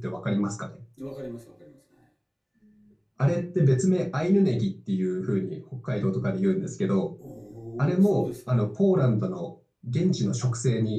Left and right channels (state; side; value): identical; both; correlation 1.00